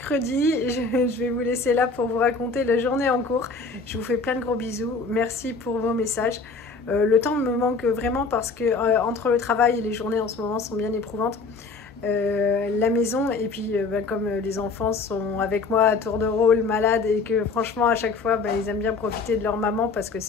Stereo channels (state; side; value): quieter; right; 4.2 dB